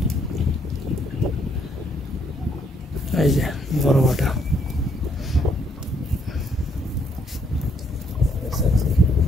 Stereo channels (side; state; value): both; normal; correlation 0.70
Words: এই যে বড় বাটা